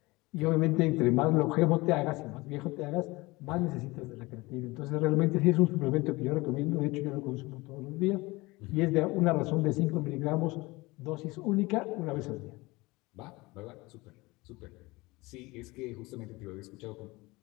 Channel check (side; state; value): right; quieter; 22.4 dB